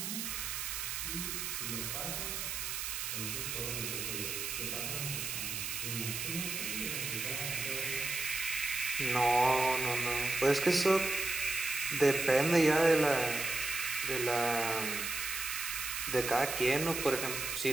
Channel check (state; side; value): noise; right; hiss, 3 dB below the sound